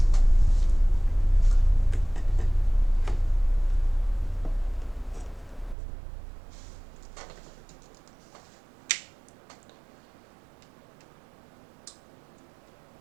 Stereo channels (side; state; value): left; drops out; at 5.8 s